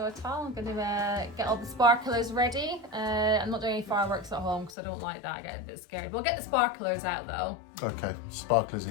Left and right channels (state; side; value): drops out; right; at 4.7 s